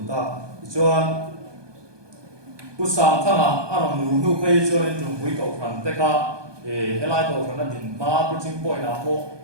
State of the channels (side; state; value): left; late; 1.2 ms